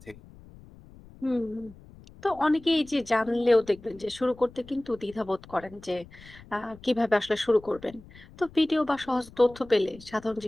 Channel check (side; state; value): left; noise; rumble, 21 dB below the sound